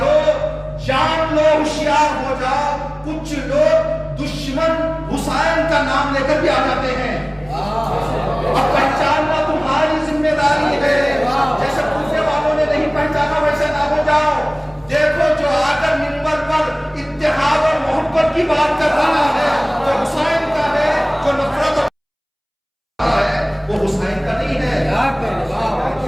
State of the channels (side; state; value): both; identical; correlation 1.00